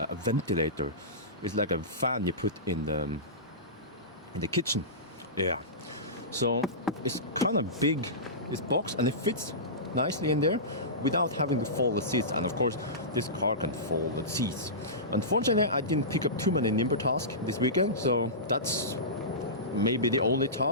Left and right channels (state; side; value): normal; both; correlation -0.20